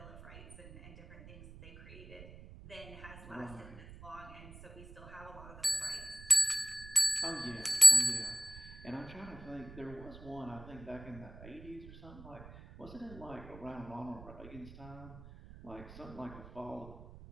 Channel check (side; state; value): right; noise; rumble, 17 dB below the sound